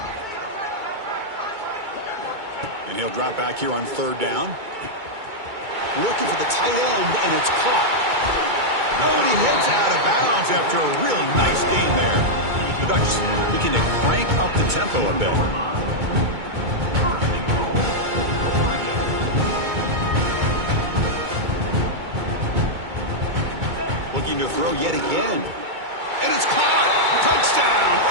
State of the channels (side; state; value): left; late; 2.2 ms